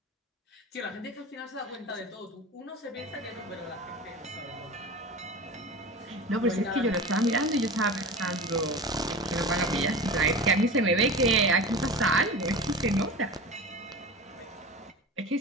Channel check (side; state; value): both; normal; correlation 0.32